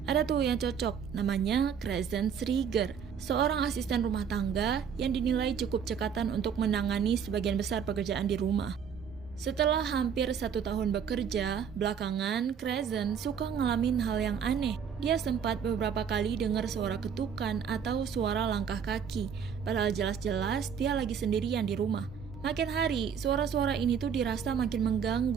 Ada tuh yang cocok, namanya Crescent Rieger, seorang asisten rumah tangga yang dinilai cukup cekatan untuk menangani sebagian besar pekerjaan di rumah. Setelah hampir 1 tahun bekerja, belakangan Crescent suka ngalamin hal yang aneh. Dia sempat beberapa kali dengar suara ketukan atau suara langkah kaki, padahal jelas-jelas dia lagi sendirian di rumah. Makin hari, suara-suara ini tuh dirasa makin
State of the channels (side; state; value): left; quieter; 7.4 dB